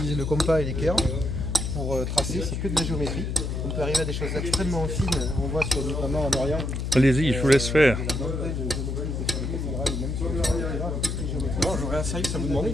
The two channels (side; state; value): left; noise; hum, 2 dB below the sound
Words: le compas et l'équerre pour tracer, c'est que de la géométrie. On peut arriver à des choses extrêmement fines, on voit notamment en Orient. Allez-y, je vous laisse faire. Non, j'aurais un service à vous demander.